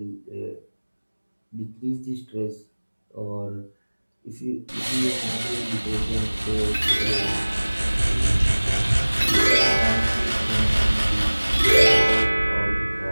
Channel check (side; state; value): both; inverted; correlation -1.00